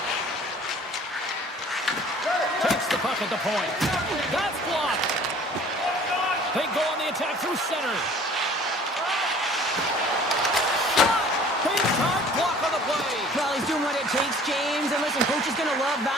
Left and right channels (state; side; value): normal; both; correlation 0.51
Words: Takes the puck at the point. That's blocked. They go on the attack through center. Shot! Big time block on the play. Well, he's doing what it takes, James. And listen, coach is going to love